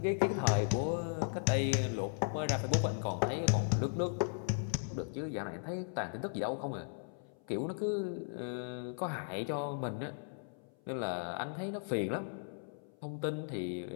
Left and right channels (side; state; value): right; silent; 53 dB below the other